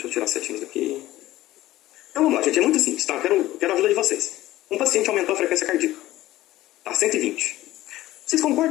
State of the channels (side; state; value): right; quieter; 15.7 dB